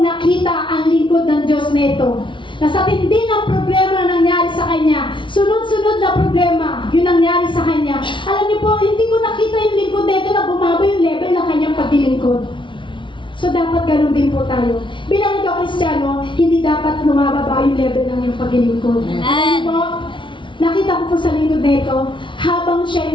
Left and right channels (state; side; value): late; right; 0.24 ms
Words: nakita ang lingkod ng Diyos na ito. Nasa tindi ng problema na nangyari sa kanya, sunod-sunod na problema yung nangyari sa kanya. Alam niyo po, hindi ko nakita yung lingkod na ito na bumaba yung level ng kanyang paglilingkod. So, dapat ganun din po tayo. Bilang ikaw Kristiyano, hindi dapat lumababa yung level ng iyong paglilingkod. Alam mo, nakita ko po sa lingkod na ito, habang siya